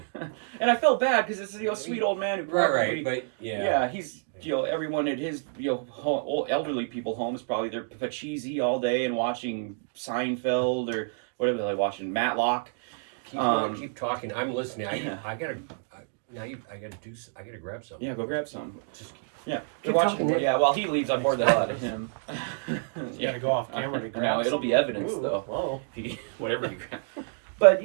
And I felt bad because it's a sweet old man who probably, he's everyone at his old elderly people home is probably they're cheesy all day and watching Seinfeld or whatever they're watching, Matlock. Keep talking. I'm listening. I gotta grab something. Yeah, go grab some. Keep they're watching. talking, Yeah, while he leaves, I bored the hell out of him. You gotta go off camera to grab. No, it'll be evidence though. Oh. Whatever he grabs. But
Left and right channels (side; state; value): left; silent; digital silence